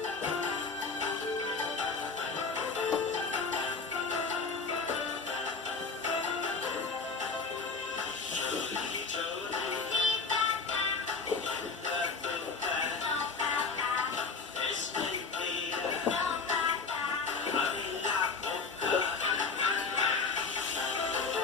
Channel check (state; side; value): quieter; right; 4.7 dB